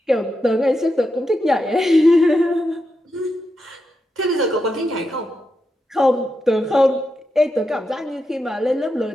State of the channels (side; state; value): both; normal; correlation 0.86